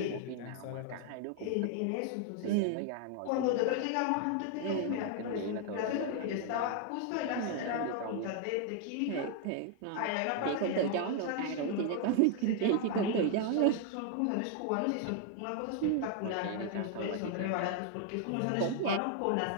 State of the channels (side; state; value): both; different; correlation 0.00